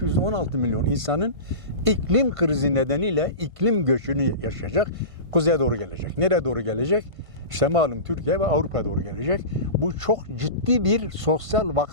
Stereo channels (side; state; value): left; late; 1.5 ms